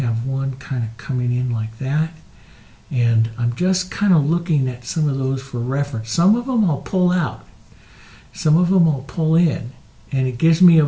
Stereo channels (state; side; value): identical; both; correlation 1.00